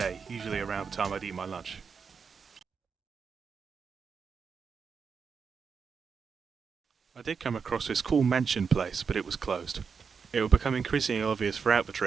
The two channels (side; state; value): left; quieter; 5.9 dB